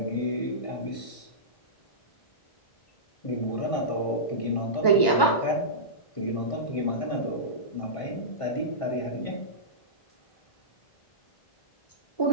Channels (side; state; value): right; late; 1.2 ms